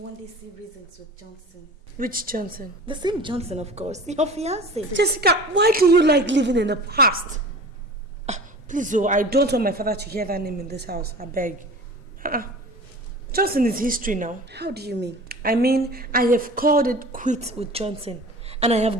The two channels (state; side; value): normal; both; correlation 0.39